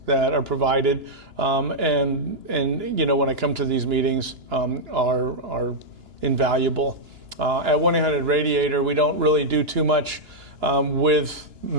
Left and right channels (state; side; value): late; left; 2.9 ms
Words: that are provided, and when I come to these meetings, are invaluable. At 1-800-Radiator, we don't really do too much with